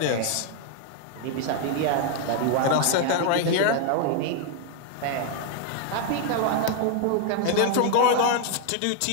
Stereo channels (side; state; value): both; different; correlation 0.00